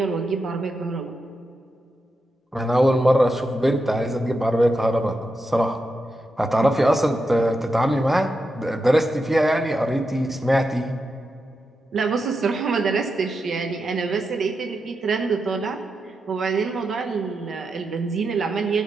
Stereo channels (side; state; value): both; normal; correlation 0.87